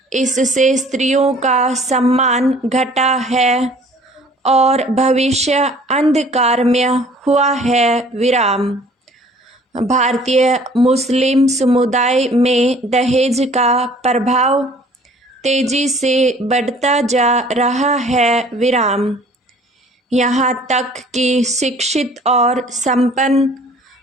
इससे स्त्रियों का सम्मान घटा है और भविष्य अंधकारमय हुआ है। विराम। भारतीय मुस्लिम समुदाय में दहेज का प्रभाव तेजी से बढ़ता जा रहा है। विराम। यहाँ तक कि शिक्षित और संपन्न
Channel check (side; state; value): both; normal; correlation 0.53